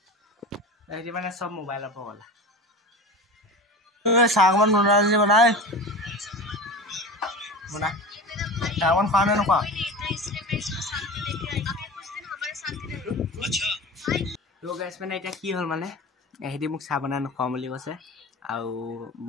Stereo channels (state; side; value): normal; both; correlation 0.31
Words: ऐसे माने सब मोबाइल पगला। सागमन बना जे बनाए बना सागमन खाने न खा। तो गाइस मैंने এটা কি হল মানে এহেদি মোক চাহ বনাই নখাও বুলি কৈছে আৰু